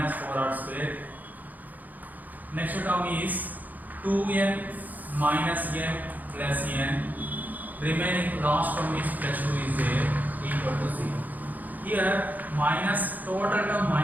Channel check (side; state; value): left; late; 0.082 ms